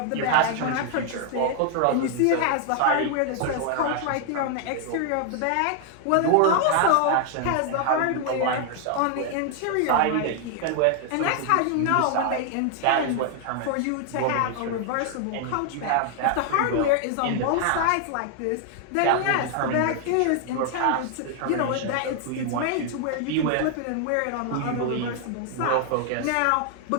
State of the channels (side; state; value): both; different; correlation 0.00